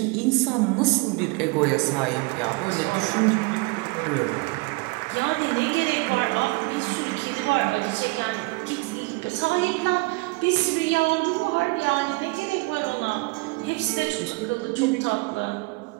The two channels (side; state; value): left; quieter; 26.0 dB